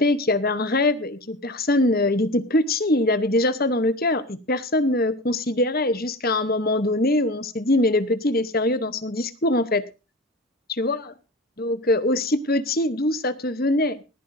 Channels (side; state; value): both; normal; correlation 0.32